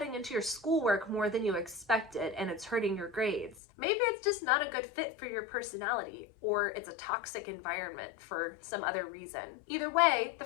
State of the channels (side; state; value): right; drops out; at 3.6 s